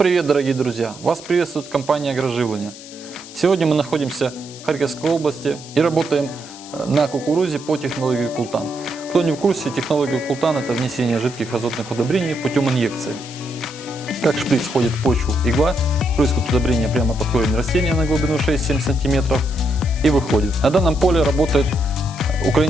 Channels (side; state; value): left; noise; hiss, 17 dB below the sound